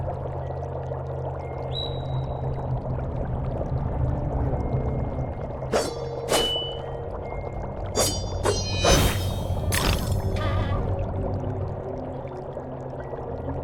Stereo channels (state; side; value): identical; both; correlation 1.00